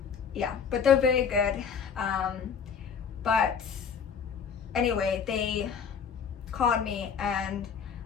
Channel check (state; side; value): quieter; right; 6.7 dB